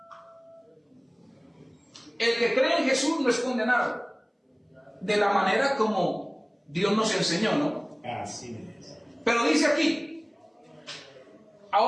el que cree en Jesús no es condenado. De la manera como Dios nos enseñó, ¿no? Así es. Pero dice aquí,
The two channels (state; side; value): identical; both; correlation 1.00